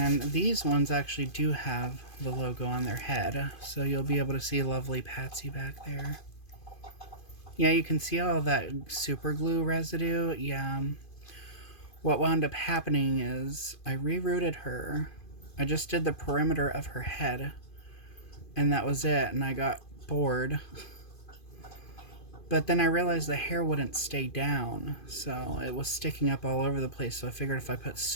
these ones actually do have the logo on their head, so you'll be able to see Lovely Patsy back there. Yeah, you can see all that super glue residue. Yeah. What wound up happening is I rerouted her. I just did the perimeter of her head, and that was it, and I got bored. But then I realized the hair wouldn't stay down, so it was sticking up all over the place, so I figured if I put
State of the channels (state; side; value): late; right; 2.5 ms